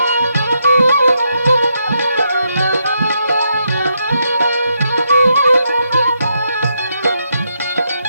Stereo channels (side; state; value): both; inverted; correlation -0.79